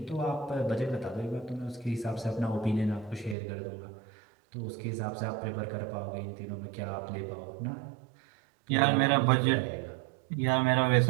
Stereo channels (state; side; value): drops out; left; at 3.4 s